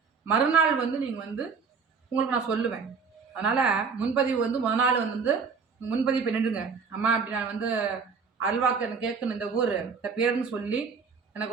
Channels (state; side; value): quieter; left; 5.5 dB